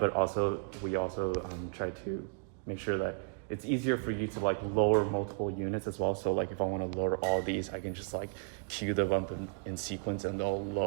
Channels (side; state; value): left; quieter; 38.6 dB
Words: we also try to make sure that it's easier for you to like lower multiple units as well. So like if I want to lower all these, I can just like cue them up in sequence and they'll